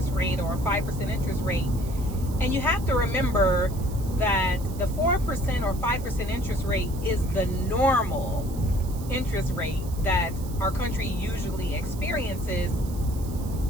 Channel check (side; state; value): right; noise; hiss, 18 dB below the sound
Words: rate or a 5% interest rate. And you have to remember that the 4% or 5% interest rate is the normal interest rate that our country usually experiences.